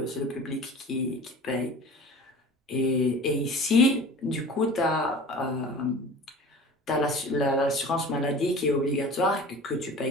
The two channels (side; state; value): both; normal; correlation 0.40